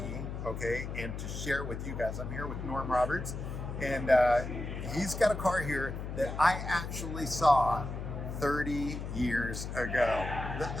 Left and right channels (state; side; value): noise; left; hum, 6 dB below the sound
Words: okay, and to share with you guys. I'm here with Norm Roberts, and he's got a car here that I actually saw 30 years ago.